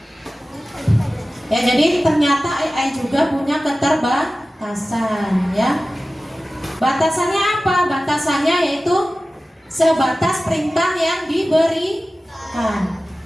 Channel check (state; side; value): normal; both; correlation 0.96